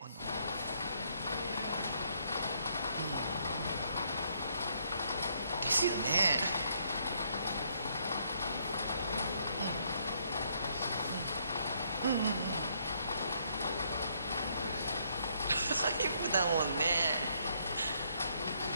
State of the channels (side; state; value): both; inverted; correlation -0.71